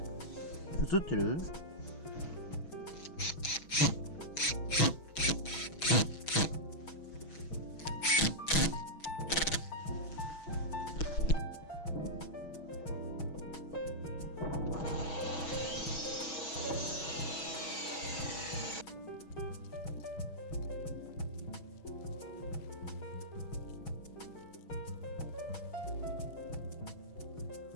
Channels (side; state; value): right; late; 6.2 ms